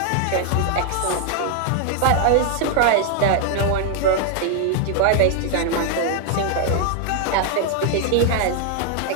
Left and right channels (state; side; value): different; both; correlation 0.00